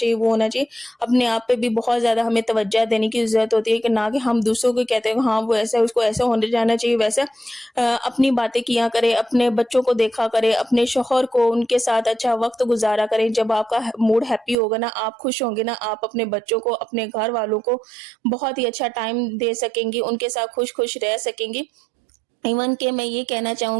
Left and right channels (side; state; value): left; drops out; at 14.6 s